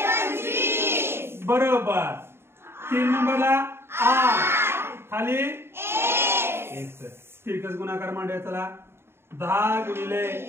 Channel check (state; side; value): late; left; 0.12 ms